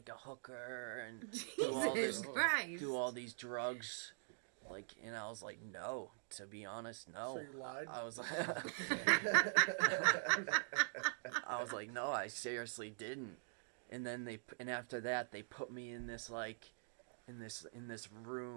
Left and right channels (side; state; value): left; silent; digital silence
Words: a hooker and Jesus Christ. do all these drugs? Like, and I was like, no. To be honest, no. So you lied? I was like, I was like, no, I seriously didn't. And then after that, they put me in this like, in this